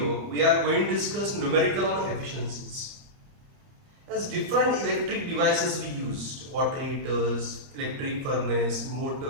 we are going to discuss numerical on efficiencies. As different electric devices we used, water heaters, electric furnace,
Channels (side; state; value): left; late; 30 ms